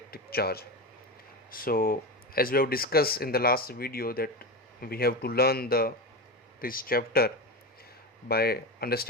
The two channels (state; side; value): normal; both; correlation 0.20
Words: charge. So as we have discussed in the last video that we have to learn this chapter by